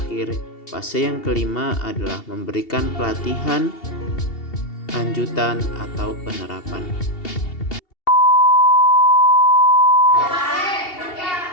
fase yang kelima adalah memberikan pelatihan lanjutan atau penerapan.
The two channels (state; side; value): late; right; 2.7 ms